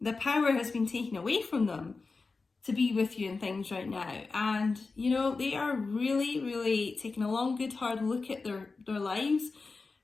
the power has been taken away from them to be with you and things right now. And, you know, they are really, really taking a long, good, hard look at their lives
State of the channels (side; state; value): right; quieter; 4.1 dB